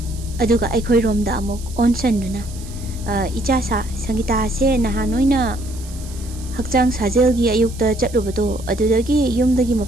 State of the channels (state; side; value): noise; right; hiss, 18 dB below the sound